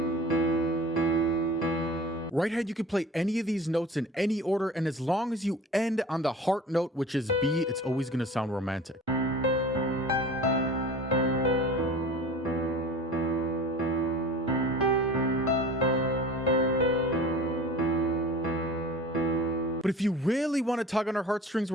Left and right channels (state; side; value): normal; both; correlation 0.39